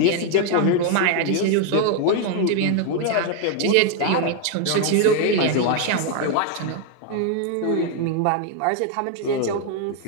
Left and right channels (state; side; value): different; both; correlation 0.01